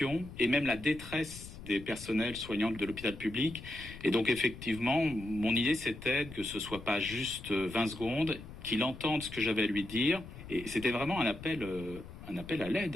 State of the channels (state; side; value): noise; left; rumble, 14 dB below the sound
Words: et même la détresse des personnels soignants de l'hôpital public. Et donc effectivement, mon idée c'était que ce soit pas juste 20 secondes, qu'il entende ce que j'avais à lui dire. Et c'était vraiment un appel à